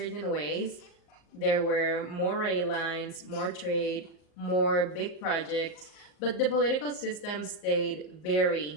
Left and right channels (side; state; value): right; late; 38 ms